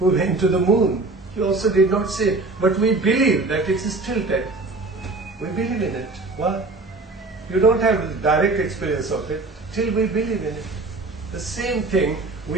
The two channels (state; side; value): quieter; left; 3.3 dB